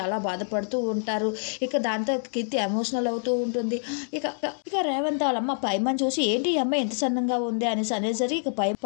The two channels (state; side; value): silent; right; 60 dB below the other